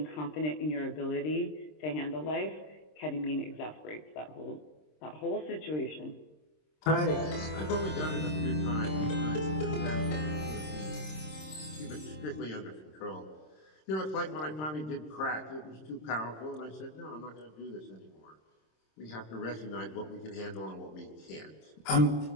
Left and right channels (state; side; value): late; right; 26 ms